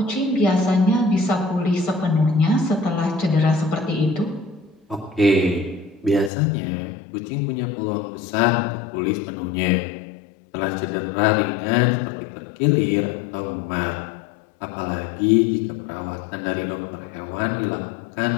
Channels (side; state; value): right; drops out; at 6.3 s